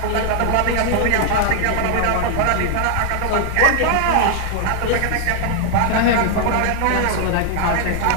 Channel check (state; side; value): different; both; correlation 0.00